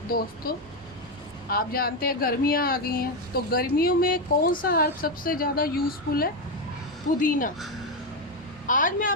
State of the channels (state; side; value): normal; both; correlation 0.08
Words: दोस्तों, आप जानते हैं गर्मियाँ आ गई हैं, तो गर्मियों में कौन सा हर्ब सबसे ज़्यादा यूज़फुल है? पुदीना। आज मैं